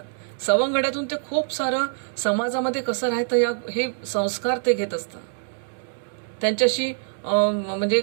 सवंगड्यातून ते खूप सारं समाजामध्ये कसं राहतं हे संस्कार ते घेत असतात. त्यांच्याशी म्हणजे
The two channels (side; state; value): left; silent; digital silence